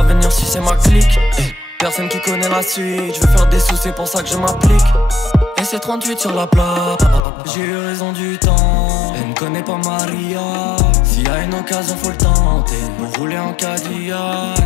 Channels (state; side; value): drops out; right; at 7.2 s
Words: venir si c'est ma clique. Personne qui connaît la suite, je veux faire des sous, c'est pour ça que je m'applique. Et c'est 38 sur la plate, j'ai eu raison du temps. Elle me connaît pas Maria, s'il y a une occasion faut le tenter. Pour rouler en Cadillac,